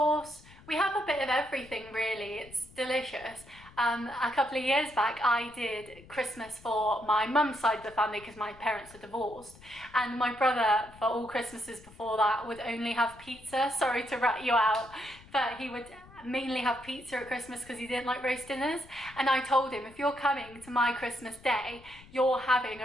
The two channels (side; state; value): left; noise; rumble, 22 dB below the sound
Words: We have a bit of everything really, it's delicious. A couple of years back I did Christmas for my mum's side of the family because my parents are divorced, and my brother for all Christmases before that would only have pizza. Sorry to rat you out, but he would mainly have pizza at Christmas because he didn't like roast dinners, and I told him, if you're coming to my Christmas day, you're having